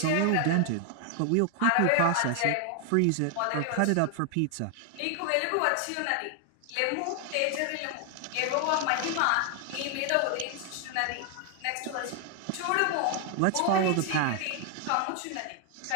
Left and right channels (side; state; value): both; different; correlation 0.00